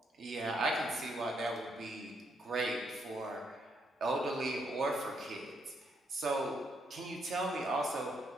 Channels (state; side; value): normal; both; correlation 0.75